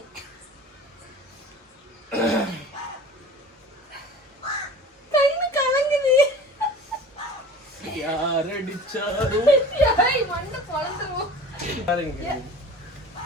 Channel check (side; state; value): both; normal; correlation 0.40